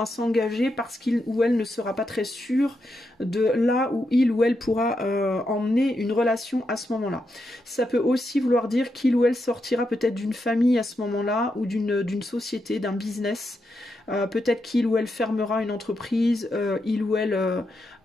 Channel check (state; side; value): normal; both; correlation 0.84